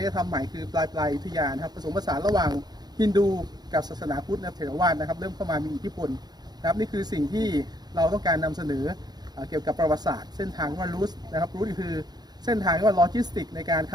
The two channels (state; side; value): late; left; 0.20 ms